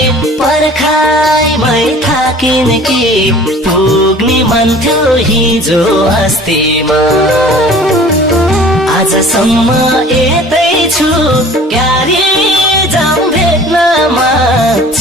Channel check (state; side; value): normal; both; correlation 0.47